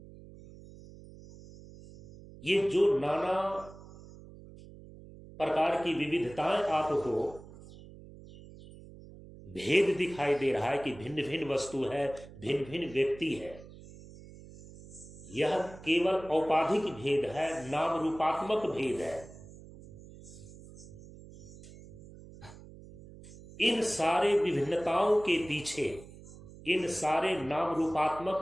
ये जो नाना प्रकार की विविधताएं आपको भेद दिखाई दे रहा है कि भिन्न भिन्न वस्तु है, भिन्न भिन्न व्यक्ति है, यह केवल औपाधिक भेद है, नाम रूपात्मक भेद है। इन सारे विभिन्नताओं के पीछे, इन सारे नाम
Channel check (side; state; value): right; noise; hum, 18 dB below the sound